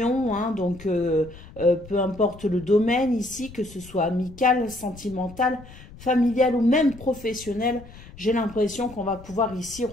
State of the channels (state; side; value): noise; left; rumble, 19 dB below the sound